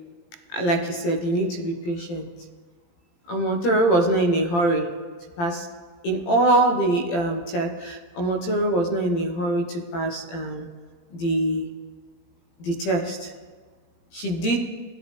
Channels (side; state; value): right; late; 17 ms